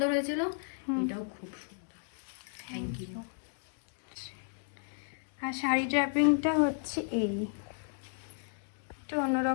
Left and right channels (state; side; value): silent; right; digital silence